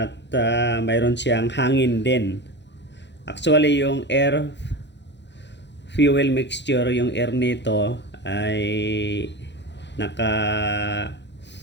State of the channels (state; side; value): late; right; 0.51 ms